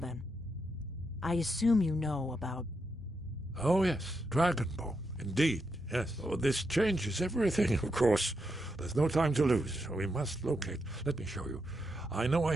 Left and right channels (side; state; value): both; normal; correlation 0.83